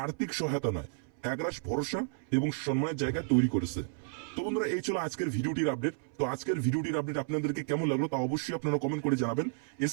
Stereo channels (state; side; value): silent; left; 56 dB below the other